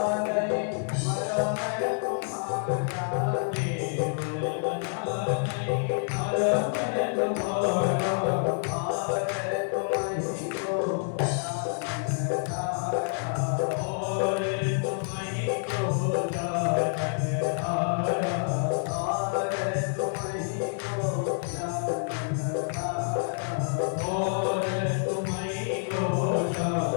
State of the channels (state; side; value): silent; right; digital silence